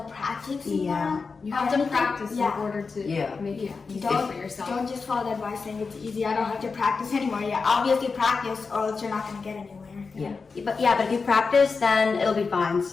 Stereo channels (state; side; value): quieter; right; 4.7 dB